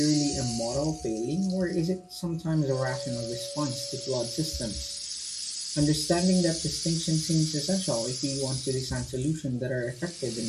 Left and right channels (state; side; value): identical; both; correlation 1.00